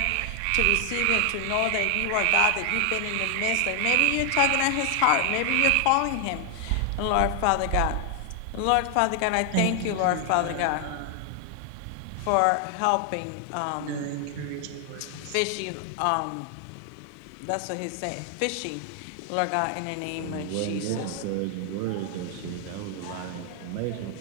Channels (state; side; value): different; both; correlation 0.00